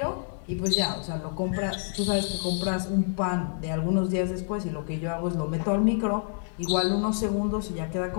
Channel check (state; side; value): silent; right; 59 dB below the other